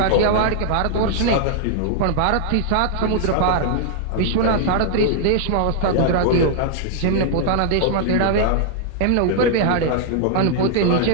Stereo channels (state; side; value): different; both; correlation -0.01